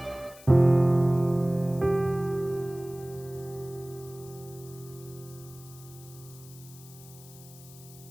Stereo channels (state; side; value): noise; left; hiss, 20 dB below the sound